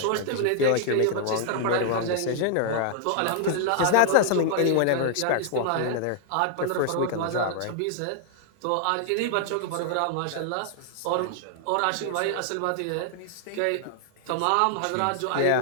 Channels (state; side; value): different; both; correlation -0.01